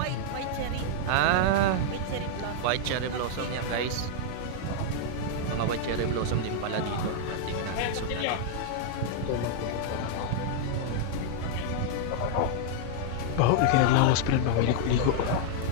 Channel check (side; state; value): both; different; correlation 0.00